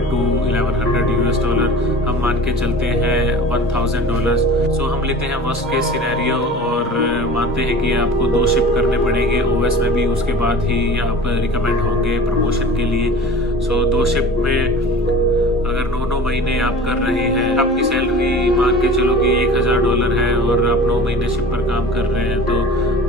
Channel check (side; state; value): both; normal; correlation 0.40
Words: to $1100 US। हम मान के चलते हैं $1000। सो हम लेते हैं वर्स्ट केस सिनेरियो और मानते हैं कि आपको 2 शिप करने पड़ेंगे ओएस में भी, उसके बाद ही आप रिकमेंड होंगे प्रमोशन के लिए। सो 2 शिप में अगर 9 महीने आप कर रहे हैं, आपकी सैलरी मान के चलो कि $1000 है और आप 9 महीने शिप पर काम कर रहे हैं, तो